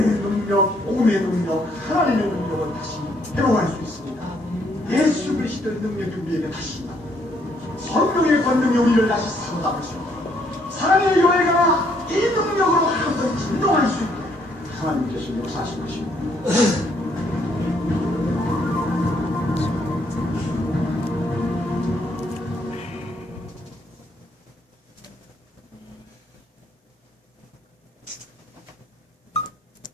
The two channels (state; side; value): normal; both; correlation 0.69